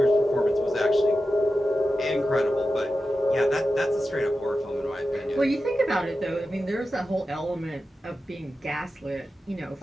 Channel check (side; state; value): both; normal; correlation 0.92